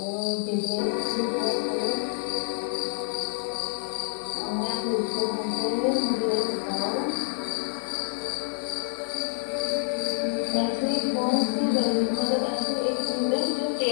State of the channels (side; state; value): right; silent; digital silence